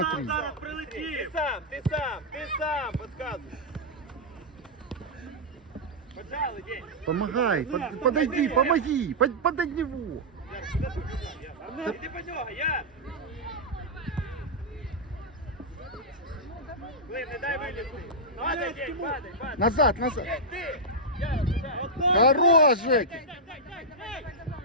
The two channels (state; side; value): normal; both; correlation -0.08